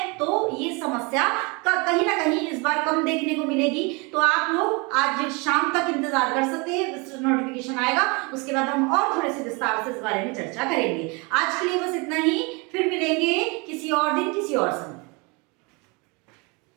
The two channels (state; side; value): quieter; left; 29.2 dB